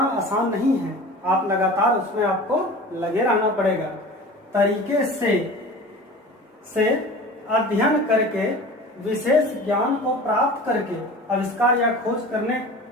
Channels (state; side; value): normal; both; correlation 0.37